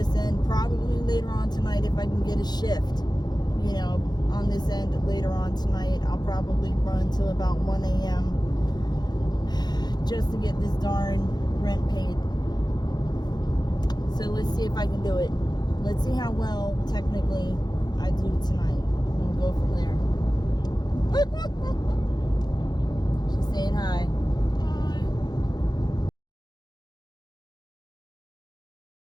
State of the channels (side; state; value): right; late; 0.20 ms